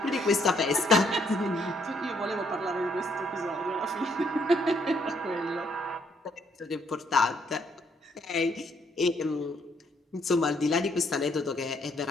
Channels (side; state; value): both; normal; correlation 0.70